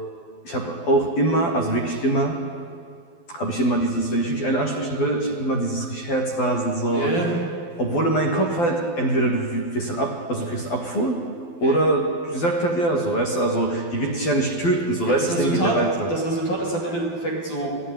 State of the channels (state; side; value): late; right; 12 ms